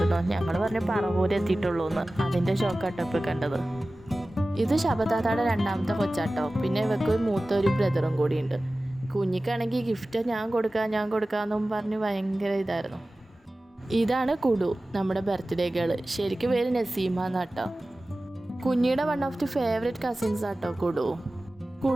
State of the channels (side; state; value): both; normal; correlation 0.96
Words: ഞങ്ങൾ പറഞ്ഞു പറവൂര് എത്തിയിട്ടുള്ളൂ എന്ന്. അതിൻ്റെ ഷോക്കാട്ടോ ഇപ്പോൾ കണ്ടത്. ഇത് ശബത്താത്താടെ 2ാമത്തെ കൊച്ചാട്ടോ. പിന്നെ ഇവർക്ക് മൂത്ത ഒരു ബ്രദറും കൂടിയുണ്ട്. കുഞ്ഞിക്കാണെങ്കിൽ ഗിഫ്റ്റ് ഞാൻ കൊടുക്കാമെന്നും പറഞ്ഞ് ഭയങ്കര ഇതായിരുന്നു. ഇതാണ് കുടു, നമ്മുടെ ബർത്ത്ഡേ ഗേള്. ശരിക്കും പേര് നസീമ എന്നാട്ടോ. കുഞ്ഞിയുടെ one of the favourite cousins ആട്ടോ കുടു.